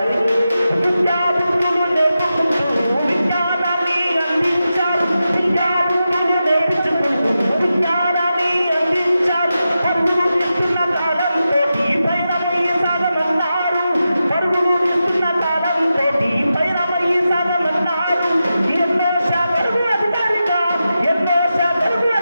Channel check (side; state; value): both; inverted; correlation -0.90